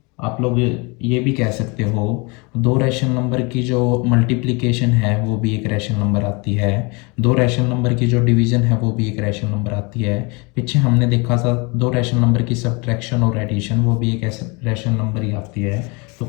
आप लोग ये भी कह सकते हो दो रैशनल नंबर की जो मल्टीप्लिकेशन है वो भी एक रैशनल नंबर आती है, दो रैशनल नंबर की जो डिवीज़न है वो भी एक रैशनल नंबर आती है। पीछे हमने देखा था दो रैशनल नंबर की सब्ट्रैक्शन और एडिशन, वो भी एक रैशनल नंबर ही आती है। तो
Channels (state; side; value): quieter; right; 29.1 dB